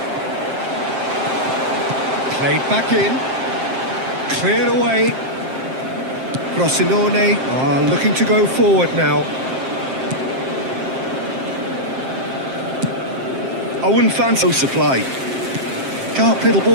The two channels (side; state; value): left; late; 7.6 ms